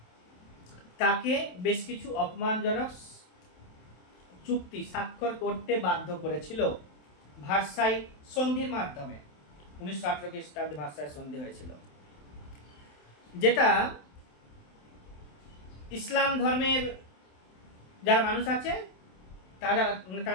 তাকে বেশ কিছু অপমানজনক চুক্তি স্বাক্ষর করতে বাধ্য করেছিল ভার্সাই সন্ধির মাধ্যমে। 1918 খ্রিস্টাব্দে ভার্সাই সন্ধি হয়েছিল, যেটা ইসলাম ধর্মের যারা মানুষ আছে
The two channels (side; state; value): right; late; 27 ms